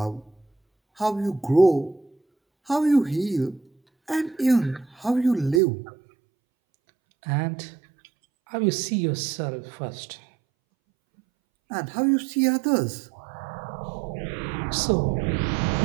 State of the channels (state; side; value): drops out; left; at 5.6 s